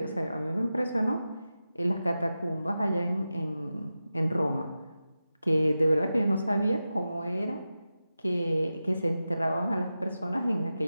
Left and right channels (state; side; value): inverted; both; correlation -0.93